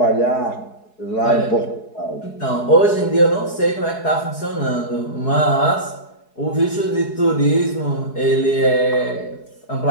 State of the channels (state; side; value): late; right; 4.7 ms